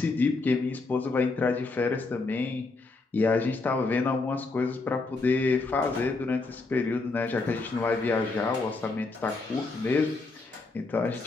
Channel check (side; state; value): right; quieter; 3.6 dB